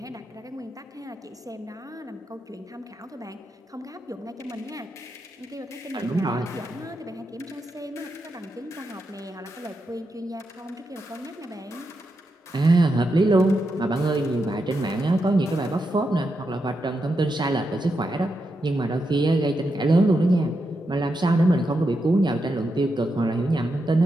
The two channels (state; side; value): normal; both; correlation 0.85